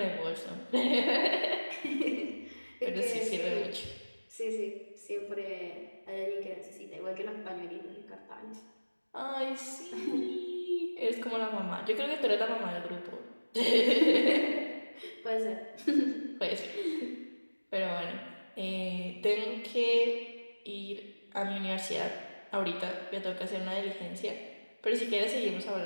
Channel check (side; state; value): both; inverted; correlation -1.00